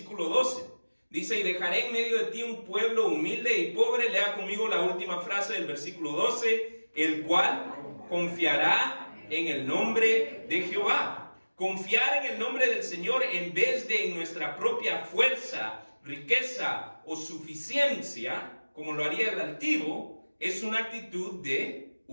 12. Dice, y dejaré en medio de ti un pueblo humilde y pobre. Lea conmigo la última frase del versículo 12, el cual confiará en el nombre de Jehová. Confiar en el nombre del Señor en vez de en nuestra propia fuerza, riqueza o suficiencia, como lo haría el altivo, es una actitud de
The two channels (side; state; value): both; inverted; correlation -1.00